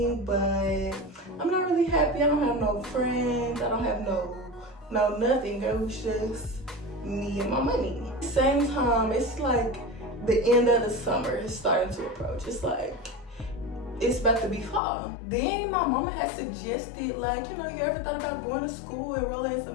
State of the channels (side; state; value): right; drops out; at 14.8 s